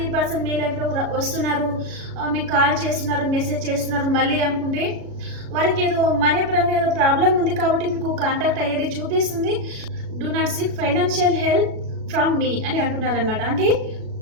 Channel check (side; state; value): left; late; 37 ms